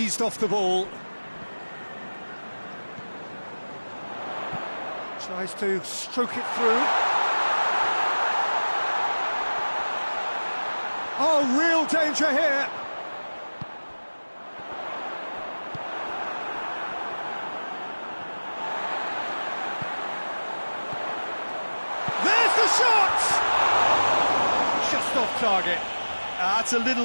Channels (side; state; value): both; inverted; correlation -1.00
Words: off the ball. Tries to stroke it through. Oh, real danger here. There's the shot! Just off target. That's a